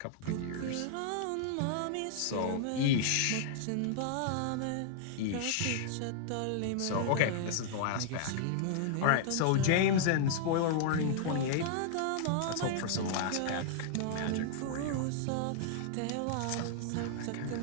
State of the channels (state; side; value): different; both; correlation -0.01